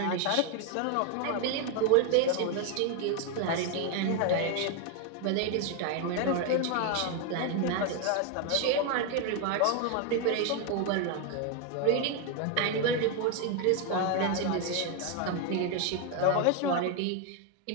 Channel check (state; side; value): different; both; correlation 0.01